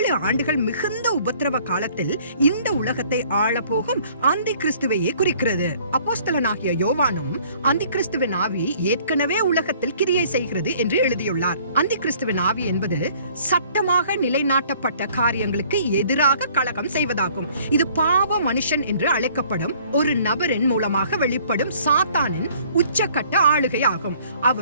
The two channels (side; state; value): both; inverted; correlation -0.57